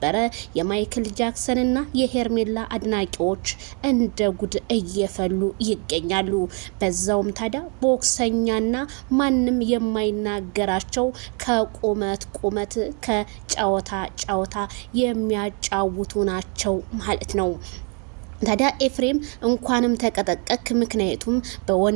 የማይክል ጃክሰንና የሄርሜላ አድናቂዎች እንደ ጉድ እየፈሉ ይገኛሉ። በዛውም ታዲያ ቦክሰኛና ማንም የማይናገራቸው ከቁመት ከጨዋታ የሚያጫውቱ ናቸው ማለት ነው። ታዲያ ኤፍሬም እንኳንም ተቀጠቀክ። ምክንያቱም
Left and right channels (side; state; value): left; quieter; 36.6 dB